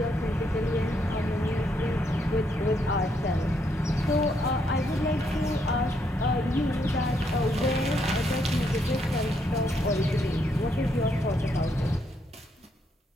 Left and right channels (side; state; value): both; normal; correlation 0.75